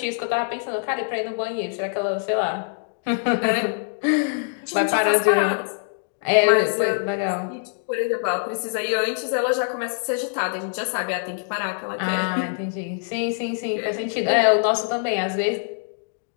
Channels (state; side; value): silent; right; digital silence